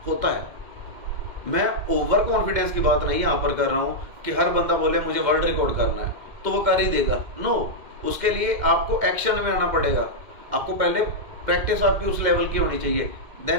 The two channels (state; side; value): late; left; 2.1 ms